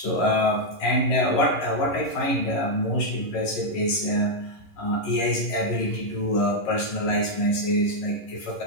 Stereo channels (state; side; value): late; right; 11 ms